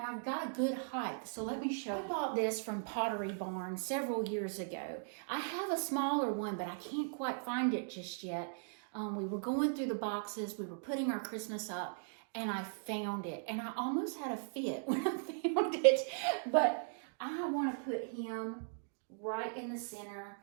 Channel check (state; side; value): silent; left; digital silence